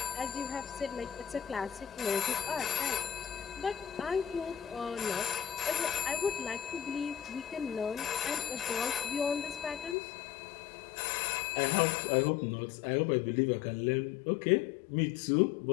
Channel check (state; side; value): drops out; right; at 10.0 s